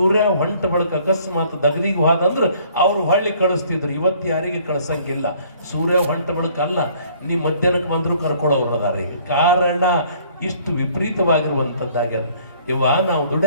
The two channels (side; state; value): both; inverted; correlation -0.58